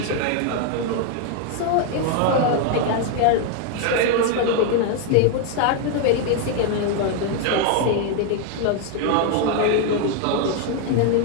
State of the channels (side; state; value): both; different; correlation 0.00